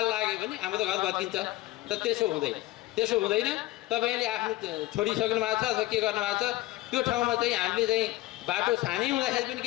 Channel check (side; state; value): right; quieter; 17.9 dB